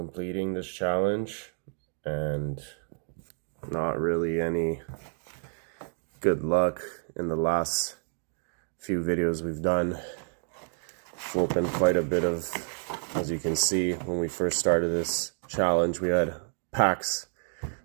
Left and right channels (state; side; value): silent; left; 58 dB below the other